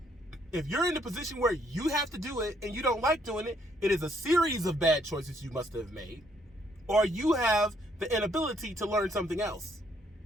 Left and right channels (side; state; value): both; normal; correlation 0.69